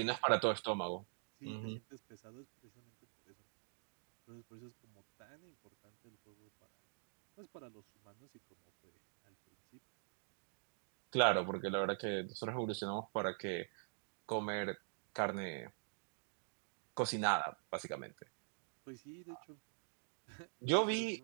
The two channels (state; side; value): silent; left; digital silence